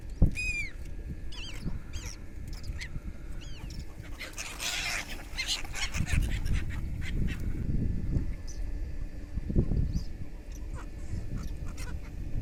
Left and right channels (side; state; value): both; identical; correlation 1.00